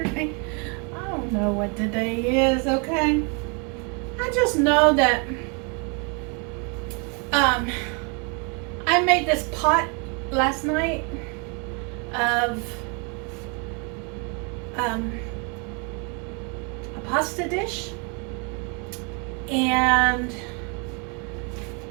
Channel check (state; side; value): quieter; left; 34.7 dB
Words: I don't know what today is, okay? I just know that I made this pot last night of a pasta dish, and